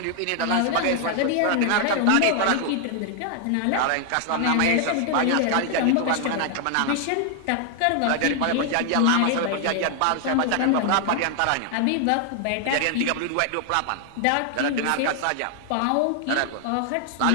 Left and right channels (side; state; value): both; different; correlation 0.00